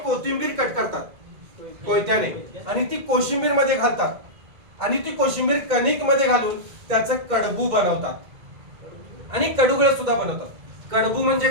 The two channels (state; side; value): late; left; 2.1 ms